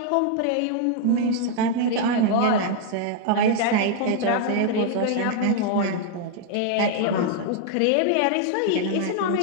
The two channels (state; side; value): different; both; correlation 0.00